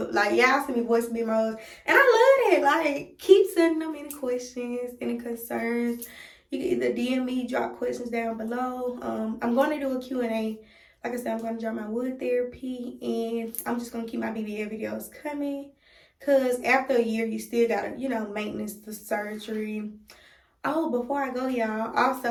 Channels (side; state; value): both; identical; correlation 1.00